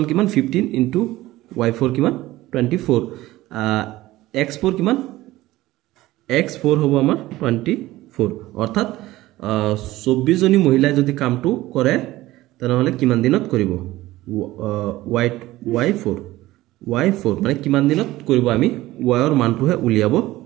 কিমান 15 into y4 কিমান 24 x4 কিমান x4 হ'ব আমাৰ 24 অৰ্থাৎ 24 জনী মহিলা যদি কামটো কৰে তেনেহলে কিমান দিনত কৰিব y4 মানে কিমান দিনত কৰিব আমি y ৰ মানটোহে উলিয়াব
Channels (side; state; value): left; quieter; 17.1 dB